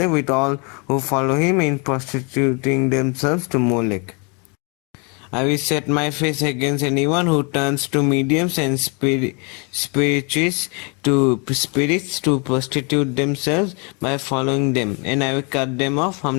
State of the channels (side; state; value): right; quieter; 33.3 dB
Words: with all who follow him in prostituting themselves to Molech. I will set my face against anyone who turns to mediums and spirits to prostitute themselves by following them, and I will cut them off